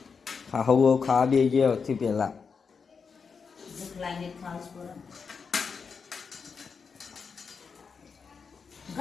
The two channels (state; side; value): quieter; right; 5.6 dB